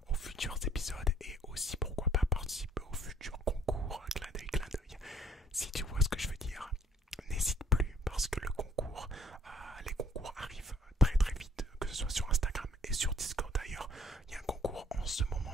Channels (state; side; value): normal; both; correlation 0.60